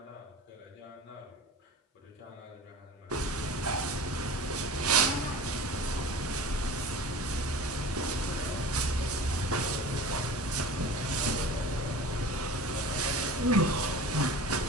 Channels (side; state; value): both; normal; correlation 0.37